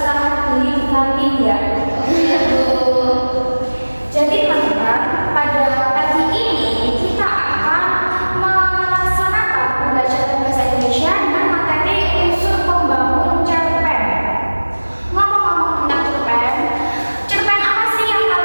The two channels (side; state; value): both; inverted; correlation -1.00